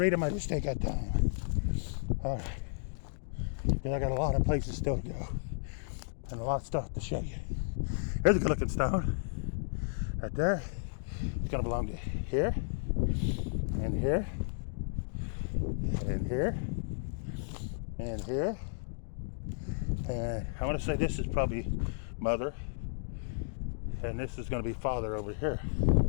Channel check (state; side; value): silent; right; digital silence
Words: them. I just ain't got time. All right. Because I got a lot of places still to go. And a lot of stuff to show you. Here's a good looking stone. Right there. It's going to belong to here. And here. And here. And here. And I want to say this is probably mother. And this is going to be father over here.